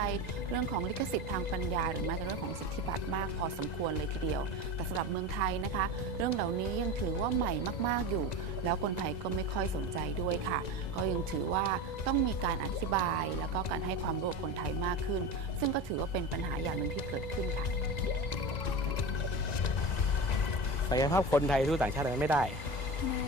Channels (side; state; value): right; late; 1.9 ms